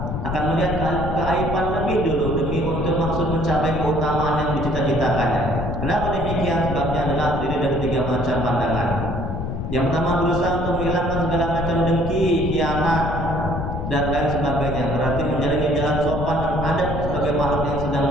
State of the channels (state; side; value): noise; left; rumble, 4 dB below the sound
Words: akan melihat keaiban lebih dulu demi untuk maksud mencapai keutamaan yang dicita-citakannya. Kenapa demikian? Sebabnya adalah terdiri dari 3 macam pandangan. Yang pertama, berusaha untuk menghilangkan segala macam dengki, khianat, dan lain sebagainya. Berarti menjalani jalan sopan dan adat sebagai makhluk yang sedang